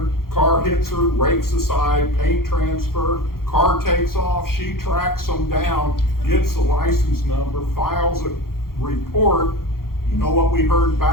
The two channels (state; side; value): late; right; 0.93 ms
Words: car hits her, rakes aside, paint transfer, car takes off, she tracks them down, gets the license number, files a report. You know what we heard